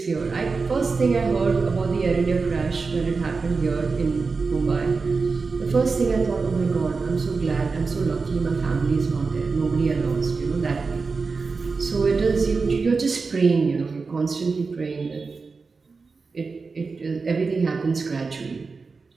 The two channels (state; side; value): quieter; left; 4.5 dB